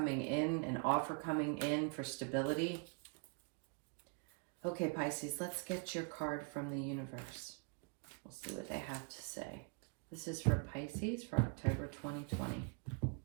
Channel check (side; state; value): left; quieter; 36.4 dB